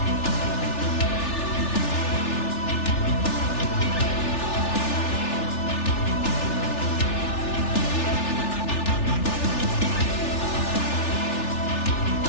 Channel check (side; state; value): right; late; 3.4 ms